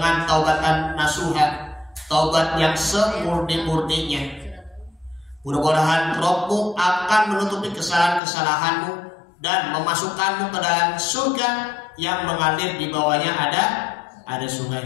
taubatan nasuha, taubat yang semurni-murninya. Mudah-mudahan Rabbmu akan menutupi kesalahan-kesalahanmu dan memasukkanmu ke dalam surga yang mengalir di bawahnya ada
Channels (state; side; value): drops out; right; at 8.2 s